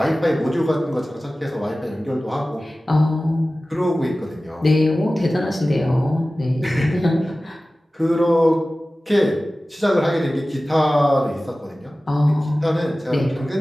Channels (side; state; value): both; normal; correlation 0.96